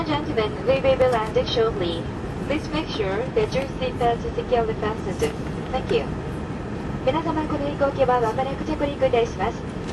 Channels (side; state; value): both; identical; correlation 1.00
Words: gentlemen, we will be landing shortly. Please make sure that your seatbelt is securely fastened. Thank you. 皆様、この飛行機はまもなく着陸いたします。